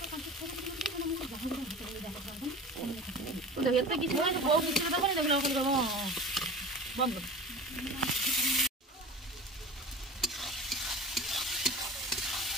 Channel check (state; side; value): normal; both; correlation 0.36